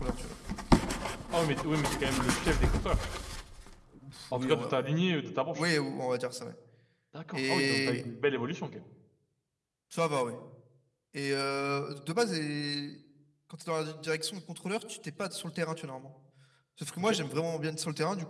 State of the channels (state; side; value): identical; both; correlation 1.00